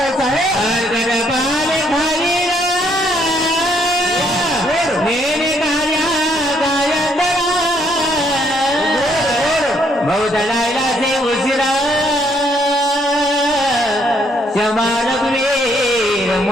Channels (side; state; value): both; normal; correlation 0.69